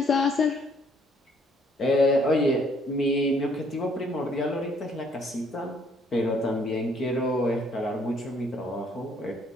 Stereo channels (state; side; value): normal; both; correlation 0.65